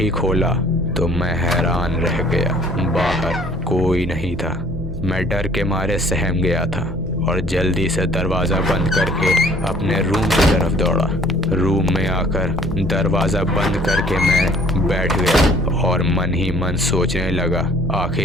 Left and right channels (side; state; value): right; noise; hum, 12 dB below the sound